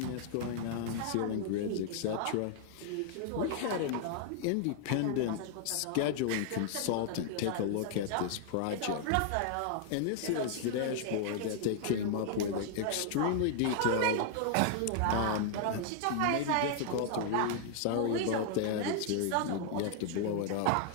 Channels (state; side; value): different; both; correlation -0.01